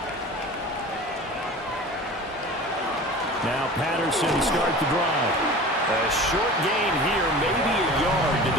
Now Patterson start the drive. A short gain here, maybe a yard to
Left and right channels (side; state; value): both; normal; correlation 0.38